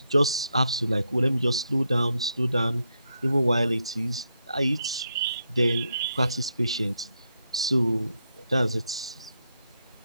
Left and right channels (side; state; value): both; inverted; correlation -0.81